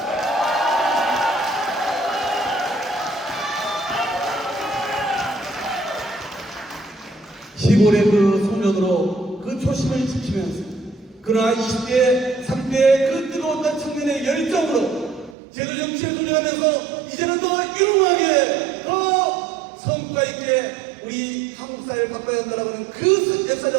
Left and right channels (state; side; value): drops out; left; at 15.4 s